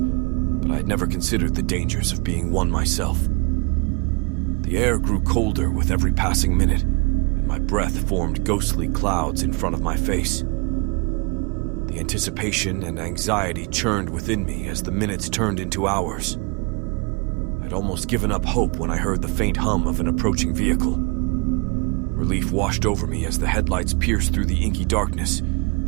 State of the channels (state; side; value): quieter; left; 31.7 dB